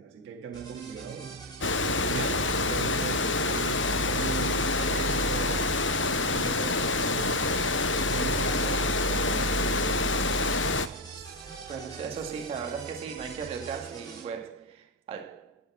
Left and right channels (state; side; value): normal; both; correlation 0.06